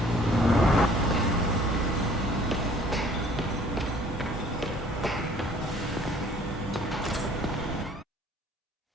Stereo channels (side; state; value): both; normal; correlation 0.55